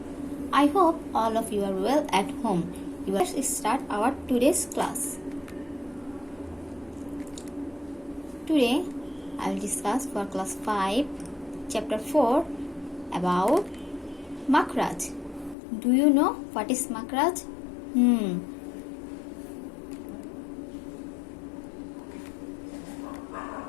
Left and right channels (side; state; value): right; drops out; at 15.6 s